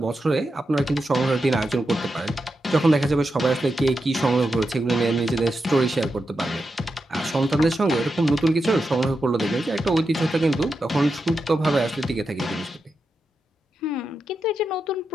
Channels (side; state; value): both; normal; correlation 0.88